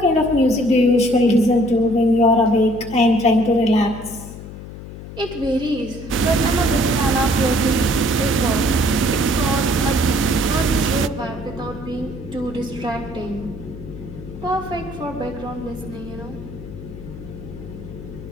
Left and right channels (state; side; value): noise; left; hum, 13 dB below the sound